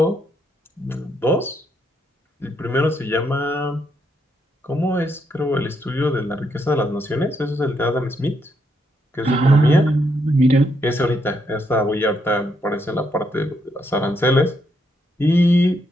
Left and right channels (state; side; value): normal; both; correlation 0.77